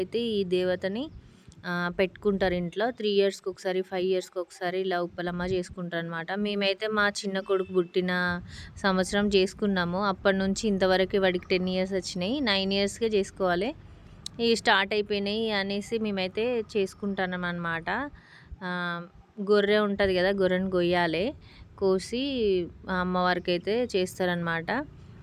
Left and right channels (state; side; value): identical; both; correlation 1.00